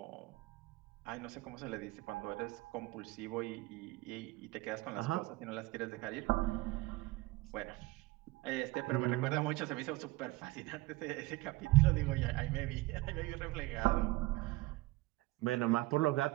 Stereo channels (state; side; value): quieter; left; 20.2 dB